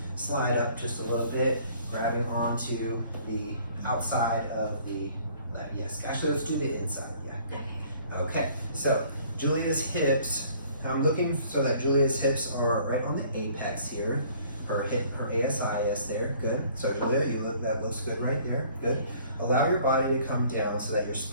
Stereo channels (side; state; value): both; inverted; correlation -0.56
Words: Slide up just a little bit, grabbing onto the outside of the ladder. Yes, actually, let's do the inside. Yeah, good. Okay, so Julia's hips. I'm looking so that Julia's hips are right on the apex here. Her ASIS there. Good. So Julia, that looks good right there. Good. Allow your body to come down so that your